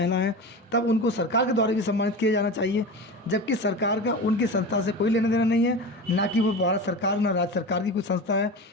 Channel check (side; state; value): both; normal; correlation 0.28